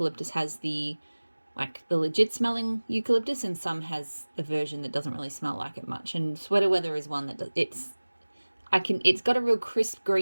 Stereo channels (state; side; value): inverted; both; correlation -1.00